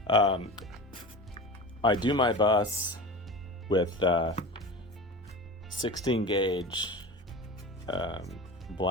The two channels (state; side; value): normal; both; correlation 0.31